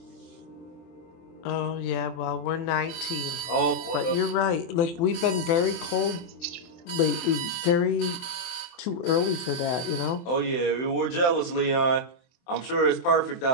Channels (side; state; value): right; late; 23 ms